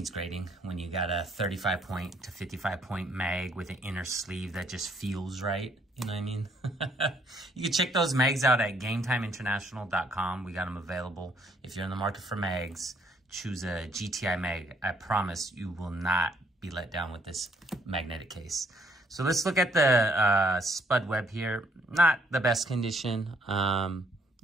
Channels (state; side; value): normal; both; correlation 0.67